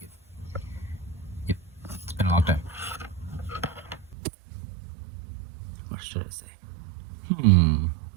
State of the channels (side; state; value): left; drops out; at 4.2 s